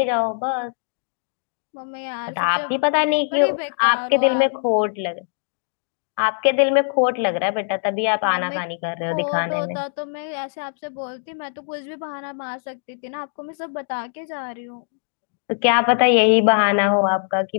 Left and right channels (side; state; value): right; silent; digital silence